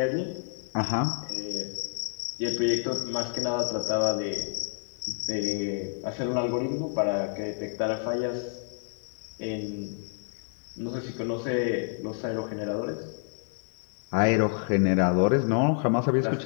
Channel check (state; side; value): silent; right; 59 dB below the other